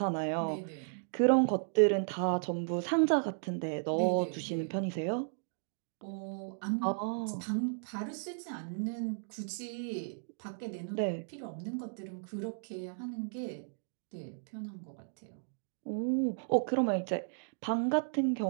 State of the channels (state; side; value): silent; left; digital silence